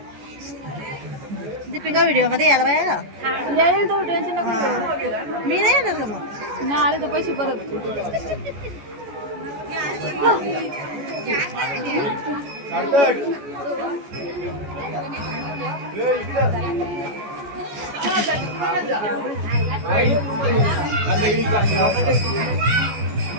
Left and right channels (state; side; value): late; left; 14 ms